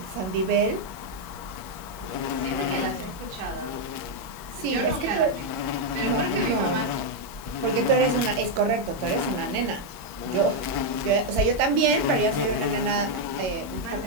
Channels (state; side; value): late; left; 22 ms